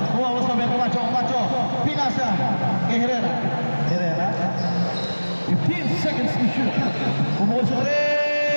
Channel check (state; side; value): inverted; both; correlation -1.00